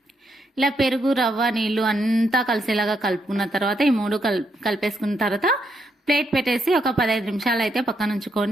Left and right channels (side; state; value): both; normal; correlation 0.78